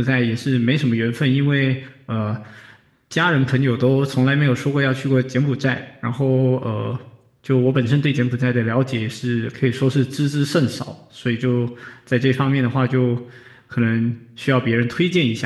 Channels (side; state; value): both; identical; correlation 1.00